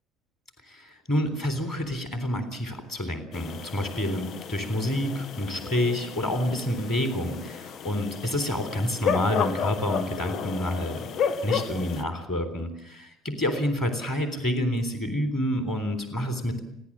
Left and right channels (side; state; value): both; normal; correlation 0.61